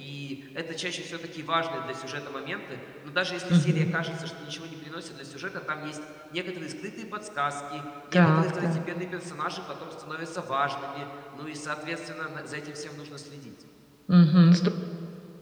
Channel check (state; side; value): identical; both; correlation 1.00